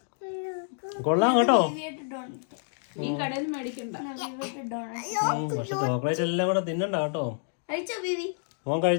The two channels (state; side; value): silent; right; digital silence